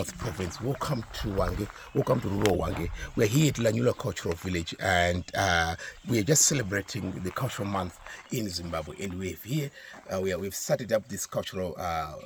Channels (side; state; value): both; identical; correlation 1.00